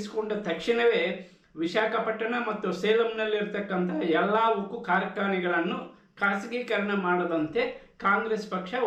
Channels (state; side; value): identical; both; correlation 1.00